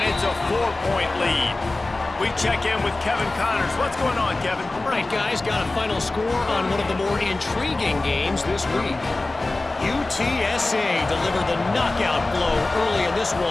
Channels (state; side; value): quieter; right; 3.1 dB